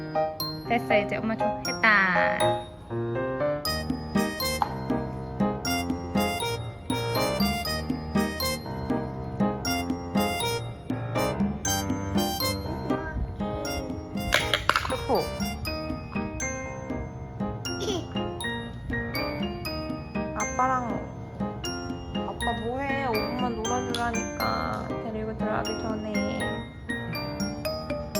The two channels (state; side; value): identical; both; correlation 1.00